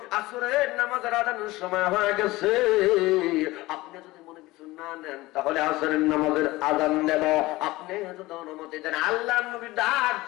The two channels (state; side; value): quieter; right; 19.4 dB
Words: আসরের নামাজের আযানের সময় হয়ে গেছে, আপনি যদি মনে কিছু না নেন তাহলে আসরের নামাজের আযান দেব, আপনি যদি অনুমতি দেন। আল্লাহর নবী ডাক